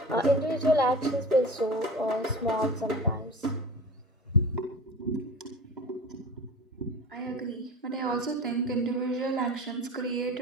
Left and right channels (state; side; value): normal; both; correlation 0.34